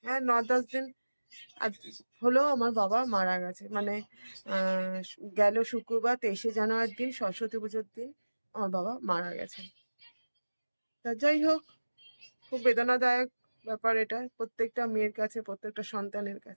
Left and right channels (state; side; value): inverted; both; correlation -1.00